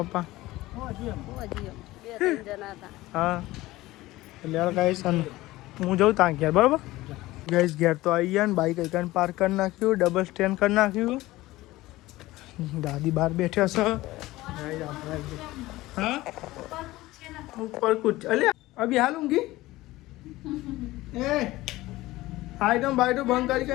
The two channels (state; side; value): quieter; right; 18.1 dB